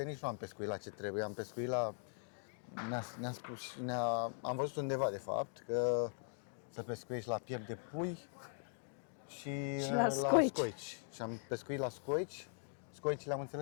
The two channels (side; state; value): right; silent; digital silence